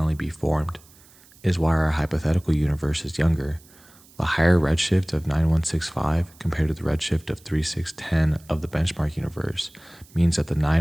be formed. It is why our hypothetical universe is younger. The higher redshift of 9165 compared to the redshift of 3610 of the benchmark universe means that the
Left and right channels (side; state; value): right; noise; hiss, 26 dB below the sound